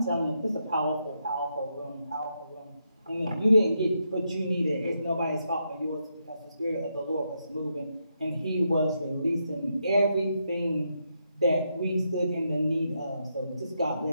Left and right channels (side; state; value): both; inverted; correlation -0.81